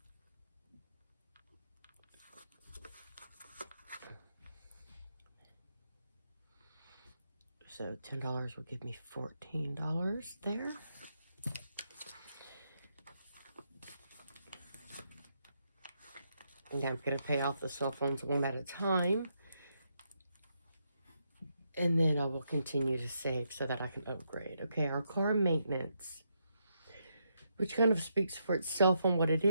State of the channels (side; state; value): both; inverted; correlation -0.80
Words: So $10 will give me $14 there. And I'm going to pay off the cell phones one at a time. And then I will continue to save so that I can upgrade. Okay, our car maintenance, which kind of speaks for itself on what it